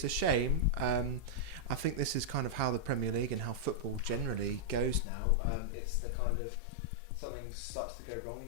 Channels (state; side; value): drops out; right; at 5.1 s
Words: a shame. I think this is kind of how the Premier League and how football generally goes now. It's the kind of something starts to go wrong